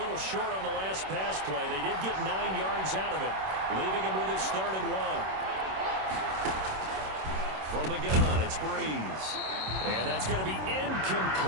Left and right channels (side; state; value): left; late; 26 ms